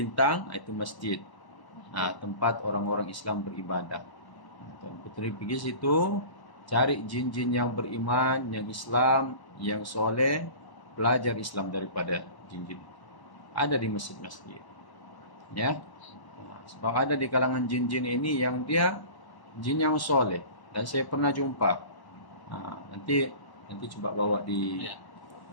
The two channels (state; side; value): late; right; 1.1 ms